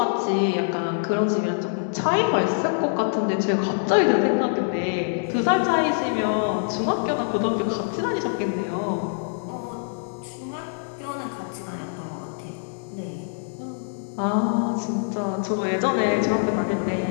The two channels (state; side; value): silent; right; digital silence